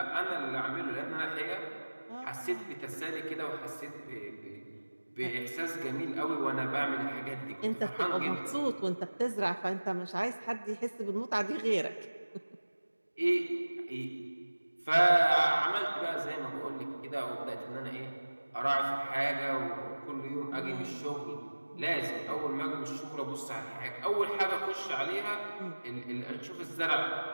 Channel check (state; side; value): inverted; both; correlation -1.00